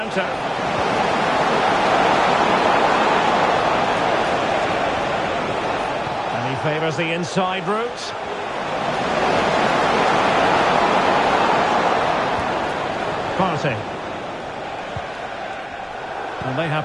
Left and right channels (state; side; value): identical; both; correlation 1.00